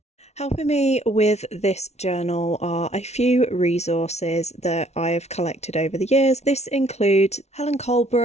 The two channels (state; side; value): late; right; 0.31 ms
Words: Helping me with this journal are a few resources that I have collected over the years. This includes Helen